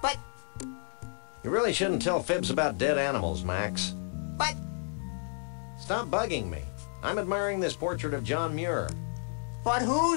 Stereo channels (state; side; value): silent; right; 57 dB below the other